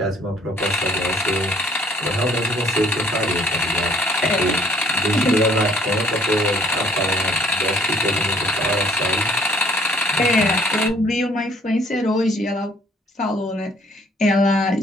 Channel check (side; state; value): both; normal; correlation 0.60